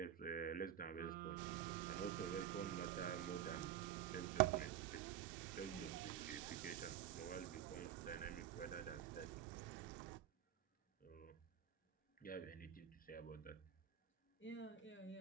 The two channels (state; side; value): quieter; left; 10.5 dB